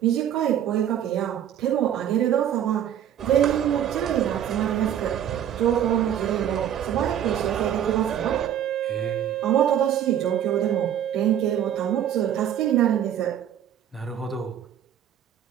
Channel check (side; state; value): left; quieter; 10.1 dB